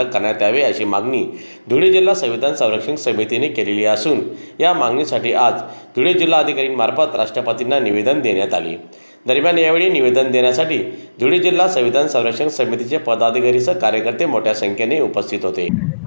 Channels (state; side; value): inverted; both; correlation -0.99